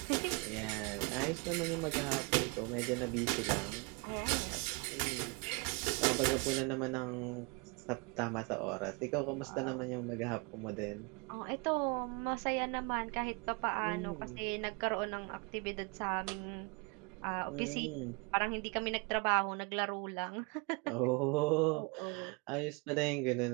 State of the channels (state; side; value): quieter; left; 31.5 dB